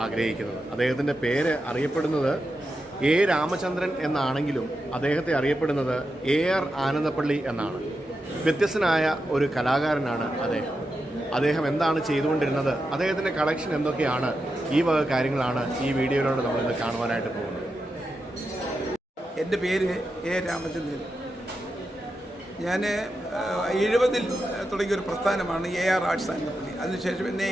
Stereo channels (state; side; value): normal; both; correlation 0.88